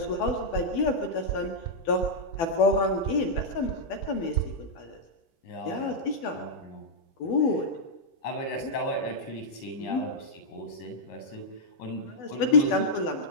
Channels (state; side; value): late; right; 12 ms